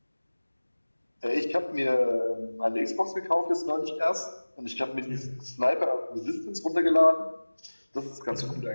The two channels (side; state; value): both; inverted; correlation -1.00